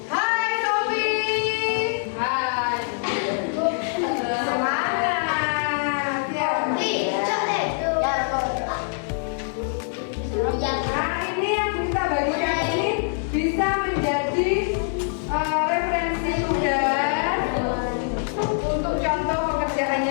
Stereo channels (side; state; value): right; silent; 63 dB below the other